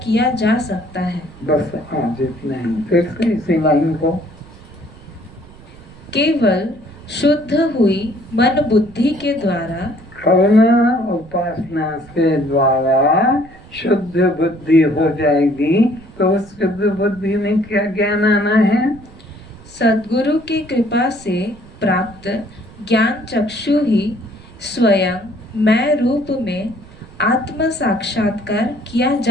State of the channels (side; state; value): right; noise; rumble, 22 dB below the sound